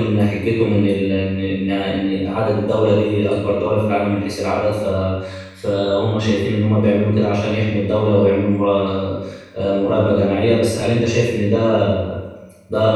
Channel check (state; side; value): identical; both; correlation 1.00